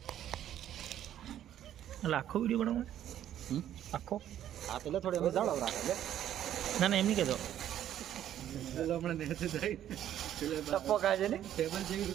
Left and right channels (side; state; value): left; quieter; 11.2 dB